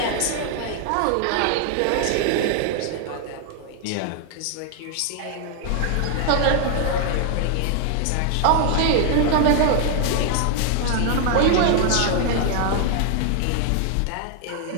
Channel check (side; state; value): both; different; correlation 0.00